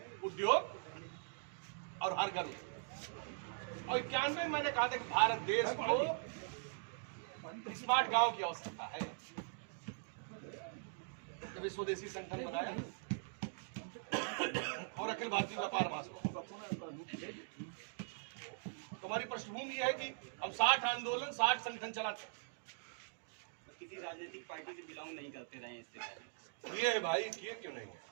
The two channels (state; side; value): silent; left; digital silence